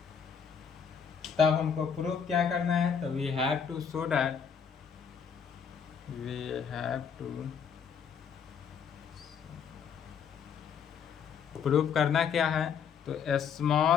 तब हमको प्रूफ क्या करना है, तो we have to show that, we have to proof करना क्या है, तो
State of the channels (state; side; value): quieter; right; 7.0 dB